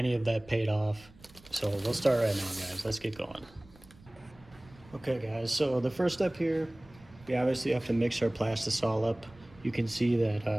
of that paid off. So we'll start right now, guys. Let's get going. Okay, guys, so the first step here, we obviously have to mix our plastisol up. You can see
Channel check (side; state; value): right; noise; rumble, 24 dB below the sound